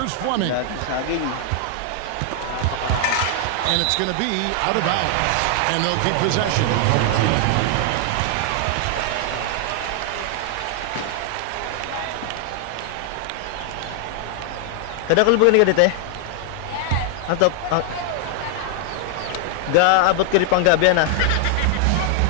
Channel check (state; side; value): different; both; correlation 0.00